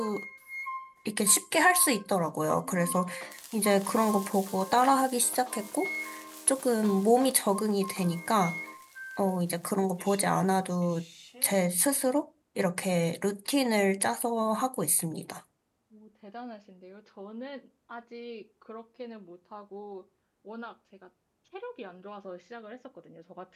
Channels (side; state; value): both; identical; correlation 1.00